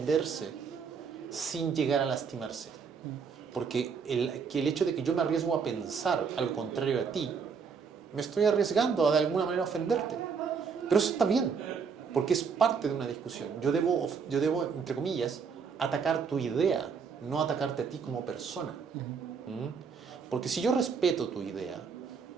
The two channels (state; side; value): quieter; left; 5.9 dB